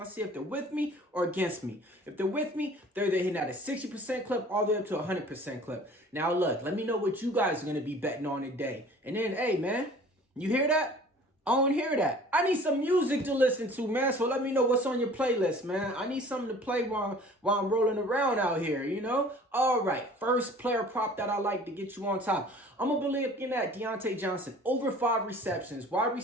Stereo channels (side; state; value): both; normal; correlation 0.48